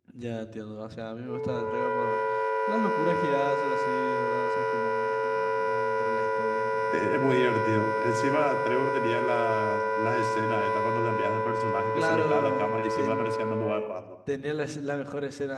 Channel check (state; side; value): identical; both; correlation 1.00